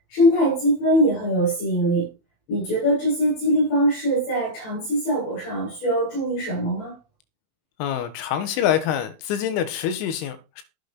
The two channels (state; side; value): late; right; 19 ms